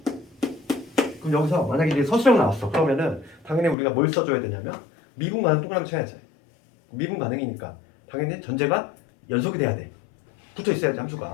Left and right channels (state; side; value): drops out; right; at 3.8 s